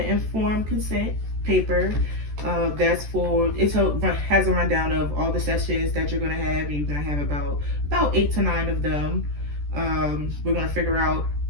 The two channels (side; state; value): left; late; 14 ms